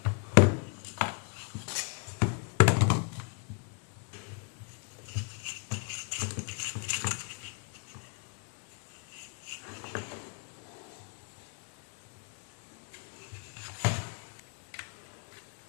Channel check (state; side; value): quieter; right; 37.3 dB